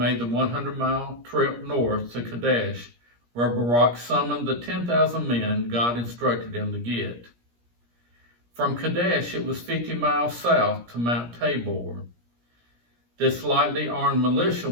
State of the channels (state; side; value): late; left; 17 ms